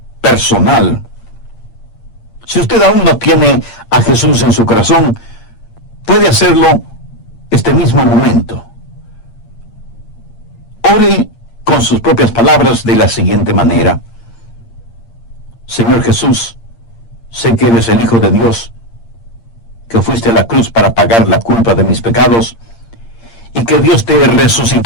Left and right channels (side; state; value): right; late; 8.7 ms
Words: personal. Si usted aún no tiene a Jesús en su corazón, puede hacerlo este mismo momento. Ore con sus propias palabras de la siguiente manera. Señor Jesús, sé que eres el Hijo de Dios, que fuiste a la cruz para pagar la culpa de mis pecados, y que Dios te